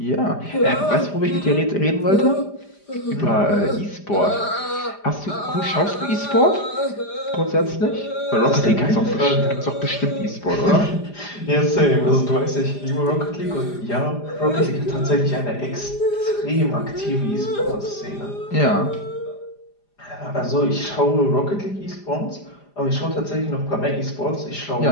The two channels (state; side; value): late; right; 5.0 ms